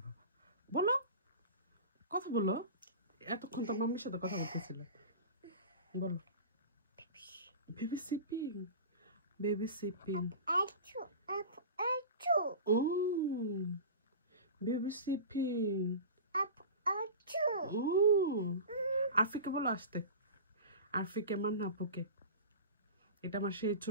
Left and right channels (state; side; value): inverted; both; correlation -0.32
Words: বাবা, বলো, কথা বলো। এতক্ষণ তো মাম্মির সাথে কথা বলতেছিল, বলো। বেবি সিপিং, বেবি সিপিং, ও বেবি সিপিং, ও আরফিকে বলো আসতে, আরফিকে আমার নাপুকে। এটা আমার সেই